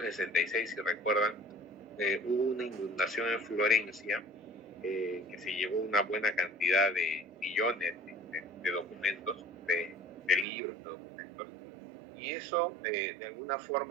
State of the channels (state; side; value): drops out; left; at 10.5 s